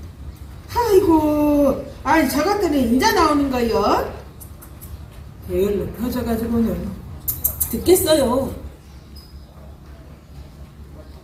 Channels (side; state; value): both; identical; correlation 1.00